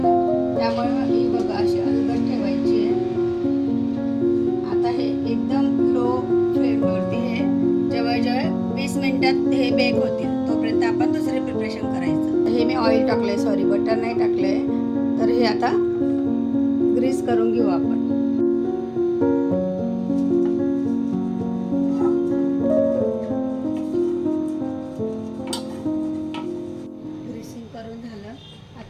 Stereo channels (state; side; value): identical; both; correlation 1.00